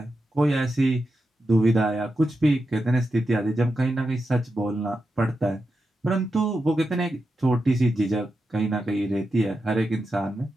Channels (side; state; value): both; normal; correlation 0.88